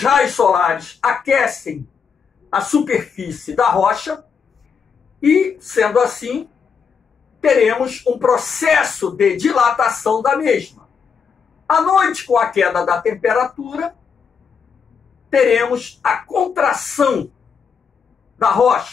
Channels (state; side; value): quieter; right; 6.3 dB